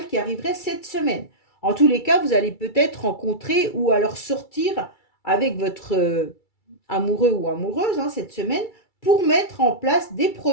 qui arriverait cette semaine. En tous les cas, vous allez peut-être rencontrer ou alors sortir avec votre amoureux ou amoureuse, hein, cette semaine pour mettre en place des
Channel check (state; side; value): late; right; 2.3 ms